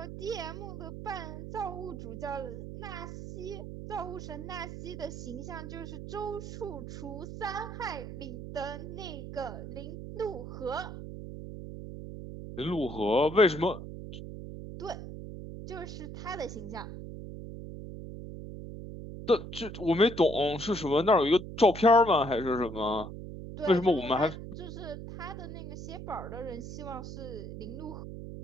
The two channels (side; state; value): right; noise; hum, 9 dB below the sound